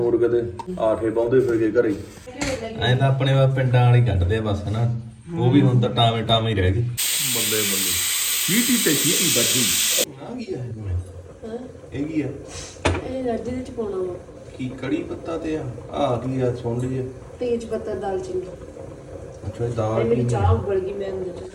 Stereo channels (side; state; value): both; identical; correlation 1.00